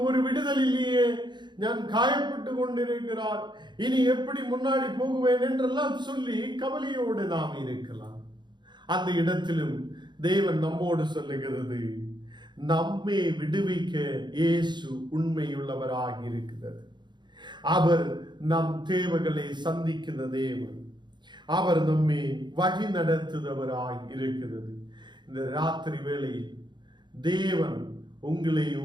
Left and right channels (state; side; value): late; left; 0.22 ms